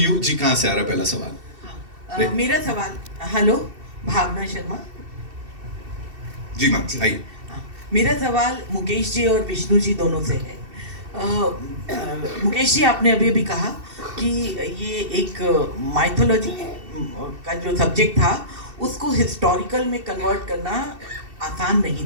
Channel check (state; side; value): late; left; 2.7 ms